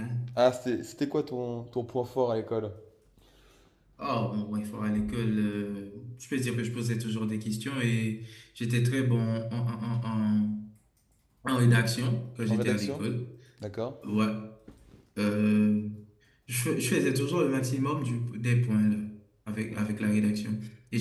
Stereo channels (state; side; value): identical; both; correlation 1.00